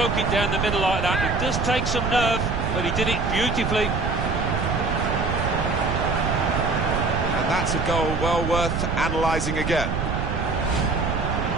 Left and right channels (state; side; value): noise; right; rumble, 2 dB below the sound